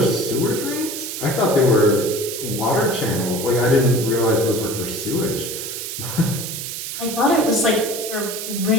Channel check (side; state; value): right; noise; hiss, 6 dB below the sound